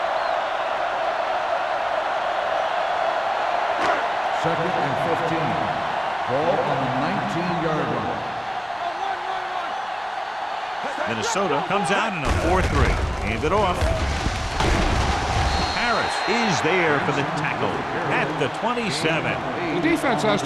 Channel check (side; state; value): both; identical; correlation 1.00